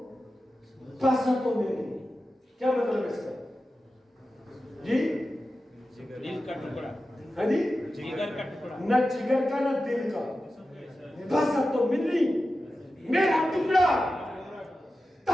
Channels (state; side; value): normal; both; correlation 0.93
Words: بسا تو منی، کیا مطلب اس کا؟ جی دل کا ٹکڑا، ہاں جی، جگر کا ٹکڑا، نہ جگر کا نہ دل کا. بسا تو منی، میرا ٹکڑا.